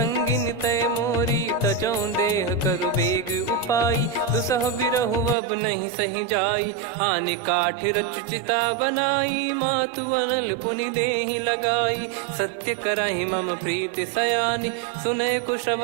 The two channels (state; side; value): drops out; left; at 5.4 s